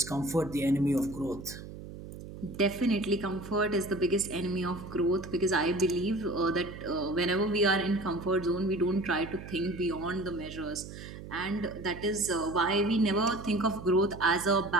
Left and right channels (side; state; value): right; noise; hum, 13 dB below the sound